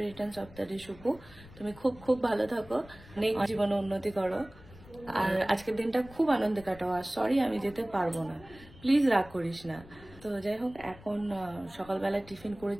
returns of the day Supu. তুমি খুব খুব ভালো থাকো, অনেক জীবনে উন্নতি করো, আর আজকের দিনটা খুব আনন্দে কাটাও। আর সরি আমি যেতে পারবো না, প্লিজ রাগ করিস না। তো যাই হোক, এখন সকালবেলা টিফিন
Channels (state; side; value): noise; left; rumble, 20 dB below the sound